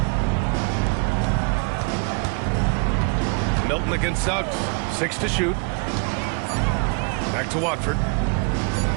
Milton against Suggs. 6 to shoot. Back to Watford.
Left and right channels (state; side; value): quieter; left; 34.9 dB